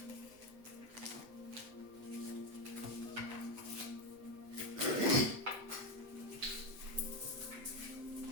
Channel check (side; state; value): left; late; 8.2 ms